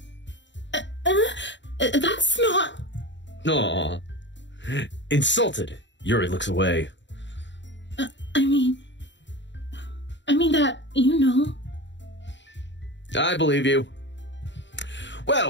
That's not... Aw. Insulted, Yuri looks away. I mean that, I believe you.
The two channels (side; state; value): right; late; 0.53 ms